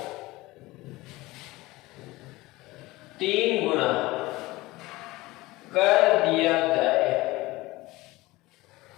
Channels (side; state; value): right; quieter; 20.1 dB